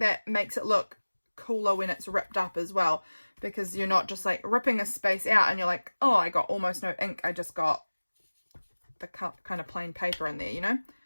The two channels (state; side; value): inverted; both; correlation -1.00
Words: makes it look cooler when it's ripped up as well, because you're not just like ripping a space out and you're like, oh, I got almost no ink, I just got the kind of plain paper in there, you know.